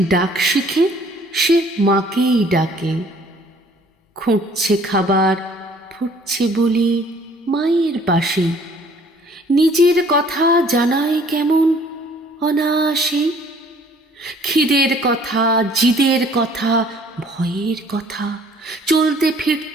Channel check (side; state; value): both; normal; correlation 0.57